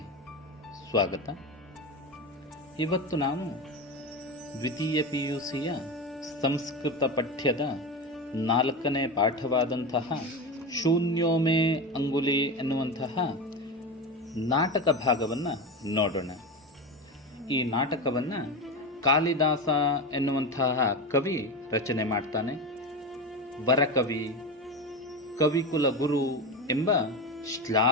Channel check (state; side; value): normal; both; correlation 0.20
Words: ಸ್ವಾಗತ. ಇವತ್ತು ನಾವು ದ್ವಿತೀಯ PUCಯ ಸಂಸ್ಕೃತ ಪಠ್ಯದ 4ನೇ ಪಾಠವಾದಂತಹ ಶೂನ್ಯೋ ಮೇ ಅಂಗುಲಿ ಎನ್ನುವಂತಹ ನಾಟಕ ಭಾಗವನ್ನು ನೋಡೋಣ. ಈ ನಾಟಕವನ್ನು ಕಾಳಿದಾಸ ಎನ್ನುವಂತಹ ಕವಿ ರಚನೆ ಮಾಡ್ತಾನೆ. ವರಕವಿ, ಕವಿಕುಲ ಗುರು ಎಂಬ